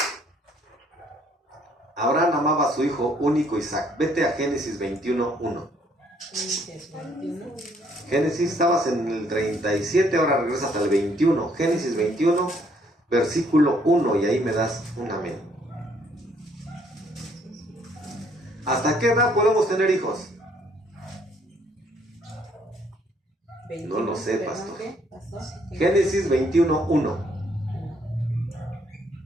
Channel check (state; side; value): normal; both; correlation 0.66